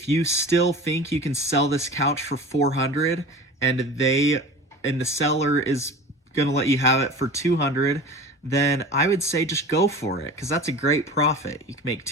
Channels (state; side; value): normal; both; correlation 0.37